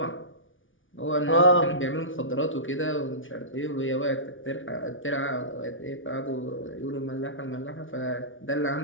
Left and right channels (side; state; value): right; late; 0.57 ms